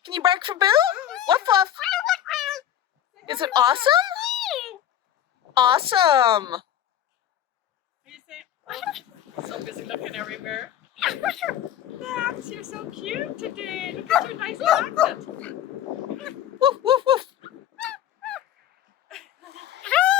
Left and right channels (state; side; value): quieter; right; 10.9 dB